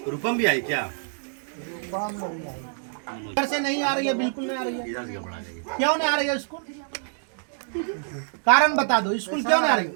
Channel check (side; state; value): left; silent; digital silence